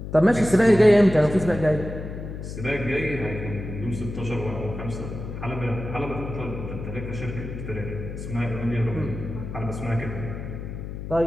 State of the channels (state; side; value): noise; left; hum, 8 dB below the sound